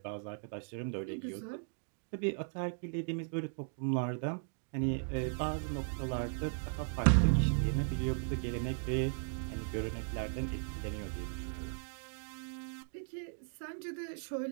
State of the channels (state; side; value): silent; left; digital silence